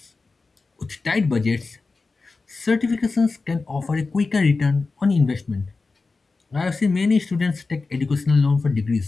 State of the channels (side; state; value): right; quieter; 3.9 dB